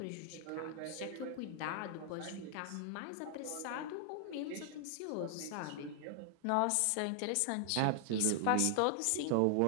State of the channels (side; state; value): both; different; correlation 0.00